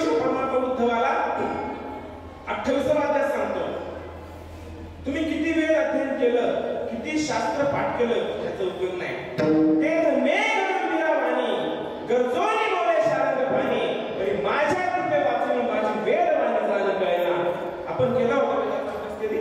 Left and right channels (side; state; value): both; identical; correlation 1.00